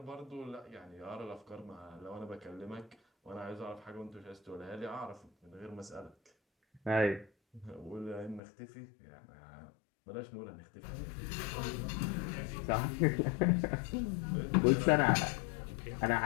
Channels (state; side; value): drops out; right; at 8.4 s